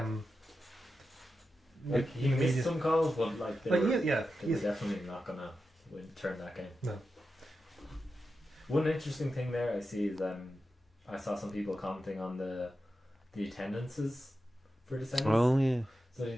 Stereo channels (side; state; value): both; normal; correlation 0.90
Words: Like he missed some calls, but they were definitely not gonna turn that game. No. One interesting thing there I see is I saw some people commenting on the attendances for the semis. Oh yeah. So the